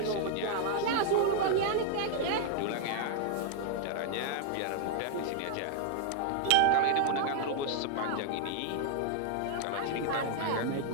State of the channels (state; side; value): different; both; correlation -0.01